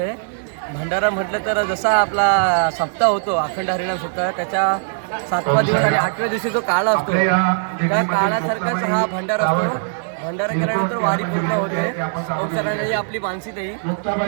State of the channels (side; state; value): left; silent; 62 dB below the other